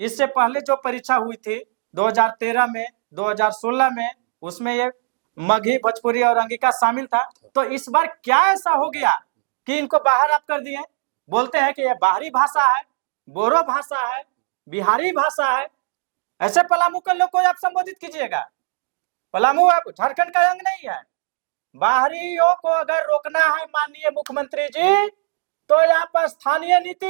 पहले जो परीक्षा हुई थी 2013 में, 2016 में, उसमें ये मगही, भोजपुरी और अंगिका शामिल था। तो इस बार क्या ऐसा हो गया कि इनको बाहर आप कर दिए? बोलते हैं कि ये बाहरी भाषा है, बोरो भाषा है, बिहारी भाषा है। ऐसे पलामू के लोग को आप संबोधित कीजिएगा। पलामू आप झारखंड का अंग नहीं है, बाहरियों को अगर रोकना है माननीय मुख्यमंत्री जी, तो आप स्थानीय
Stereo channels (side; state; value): left; silent; digital silence